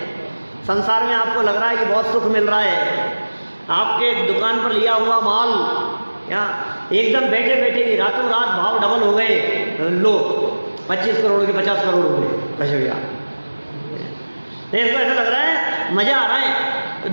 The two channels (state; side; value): inverted; both; correlation -1.00